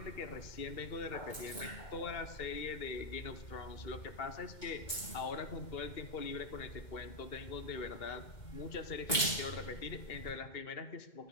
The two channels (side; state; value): right; late; 2.2 ms